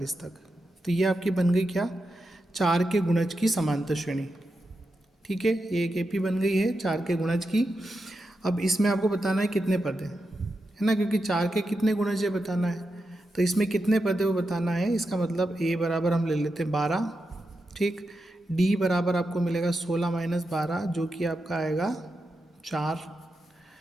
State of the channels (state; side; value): normal; both; correlation 0.88